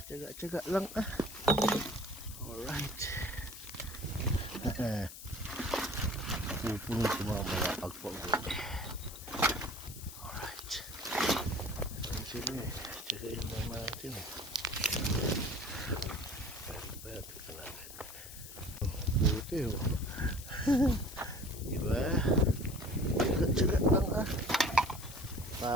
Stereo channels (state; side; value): noise; left; hiss, 13 dB below the sound